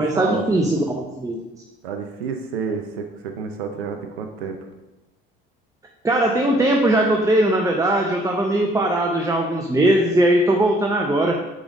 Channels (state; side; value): normal; both; correlation 0.63